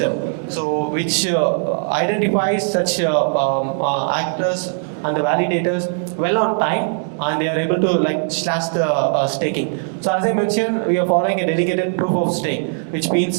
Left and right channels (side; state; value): left; silent; digital silence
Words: so which identifies such actors and the validators well on time, and they are able to like slash the staking. So as I mentioned, we are following a dedicated proof of stake, which